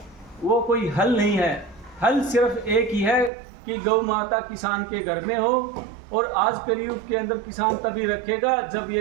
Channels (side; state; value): left; drops out; at 3.3 s